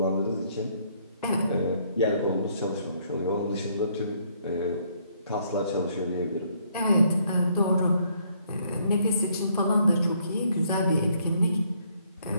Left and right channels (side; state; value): both; inverted; correlation -0.68